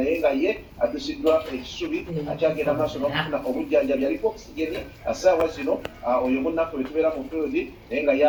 nga ye addusiddwa ekisubi akyagenda maaso n'okufuna obujjanjabi aliko oxygen assaawa zino oyo munnaffe we tubeera mu field naye nga ye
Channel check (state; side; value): identical; both; correlation 1.00